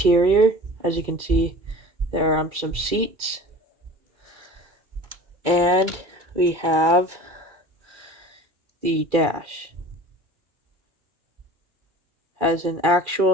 As you can see, there are some seats. And we have the dash. Has an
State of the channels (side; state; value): left; late; 2.3 ms